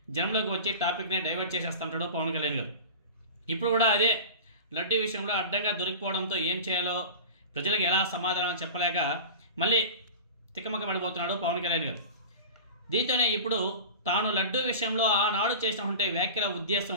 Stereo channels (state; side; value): inverted; both; correlation -0.32